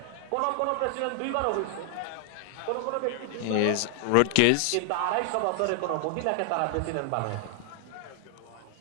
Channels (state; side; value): different; both; correlation 0.00